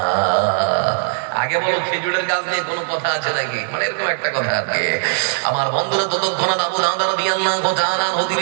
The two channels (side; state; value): left; silent; digital silence